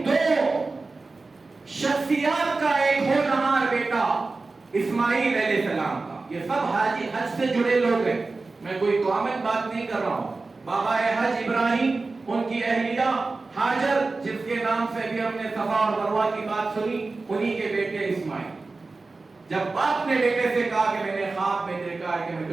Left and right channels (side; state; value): left; quieter; 3.7 dB